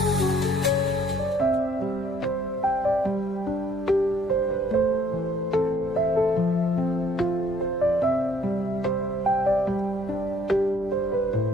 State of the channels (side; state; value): both; normal; correlation 0.61